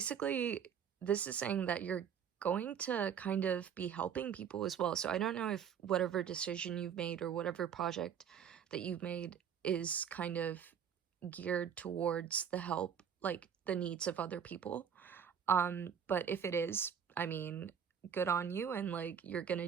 this is saying that you're going to kind of be helping people as well. So I don't know if whatever decision you've made or whatever project that you've made is kind of geared towards the help, like the needs of other people. But if it is, I mean, good on you, and like you're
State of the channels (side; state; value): left; quieter; 8.0 dB